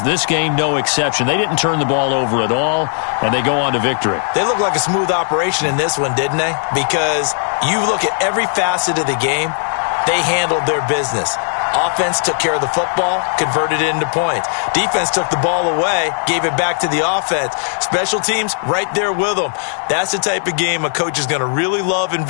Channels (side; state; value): right; silent; digital silence